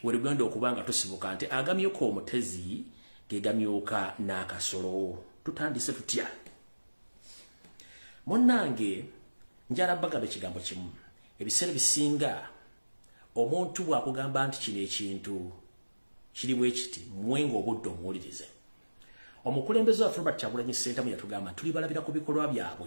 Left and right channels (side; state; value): both; inverted; correlation -1.00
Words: werugenda okuba nga tusibuka nti agamyuka omutezi gegamyuka n'akasolo. Tutandise tutya? Munnange njala bagamba ekigambo kimu. Ebiseera bisinga omuntu bw'akugamba nti kino ekintu kiri bwe kiti mwenga obudde omuwulirize. Omukulembeze waffe Robert Kyagulanyi Ssentamu yatugamba tuli balabira ku bikolwa